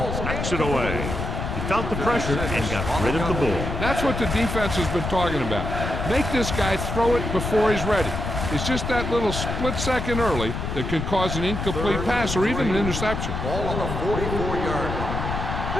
knocks it away. He felt the pressure and got rid of the ball. That's what the defense has been talking about. Make this guy throw it before he's ready. It's just that little split second early that can cause an incomplete pass or even an interception. Ball on the 44-yard line.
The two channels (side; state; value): left; noise; rumble, 4 dB below the sound